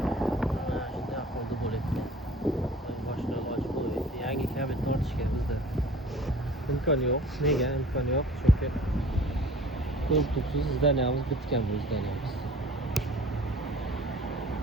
Kabel tortishga bizda imkon yo'q. Nega imkon yo'q? Chunki ko'rtuksiz zdaniyamiz bitgan bu zdaniyamiz.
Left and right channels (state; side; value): normal; both; correlation 0.47